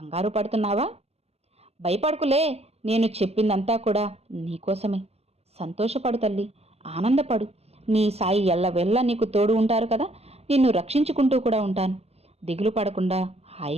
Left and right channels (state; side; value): late; left; 0.30 ms